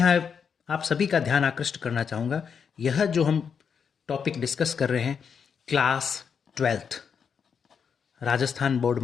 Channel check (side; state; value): right; quieter; 6.7 dB